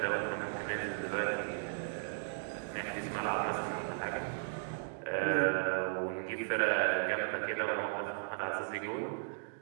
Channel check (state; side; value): silent; left; digital silence